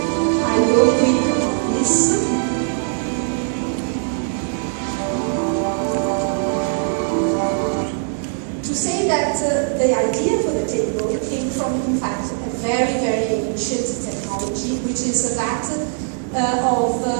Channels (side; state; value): left; silent; digital silence